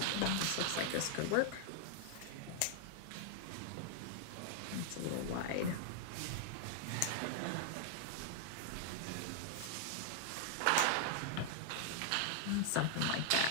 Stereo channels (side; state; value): both; different; correlation 0.00